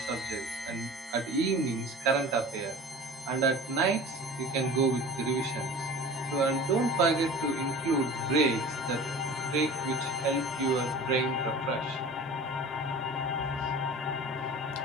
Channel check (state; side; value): normal; both; correlation 0.39